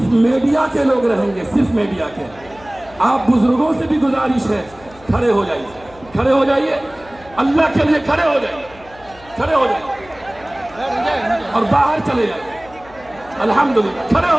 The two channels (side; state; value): left; noise; hum, 23 dB below the sound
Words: मीडिया के लोग रहेंगे, सिर्फ मीडिया के। आप बुजुर्गों से भी गुजारिश है, खड़े हो जाइए, खड़े हो जाइए, अल्लाह के लिए खड़े हो जाइए, खड़े हो जाइए और बाहर चले जाइए। अल्हम्दुलिल्लाह, खड़े